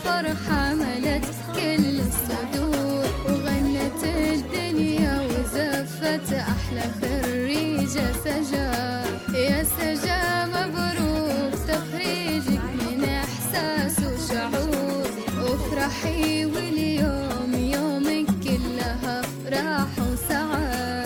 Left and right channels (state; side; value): identical; both; correlation 1.00